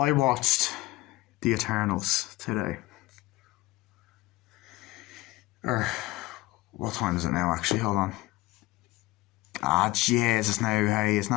watched The Eternals today. What time is it now, actually? Hold on. Ah, Jesus, now, hey, it's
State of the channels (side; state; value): right; quieter; 19.1 dB